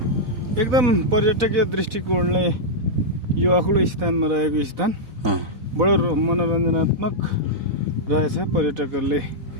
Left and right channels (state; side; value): late; left; 4.1 ms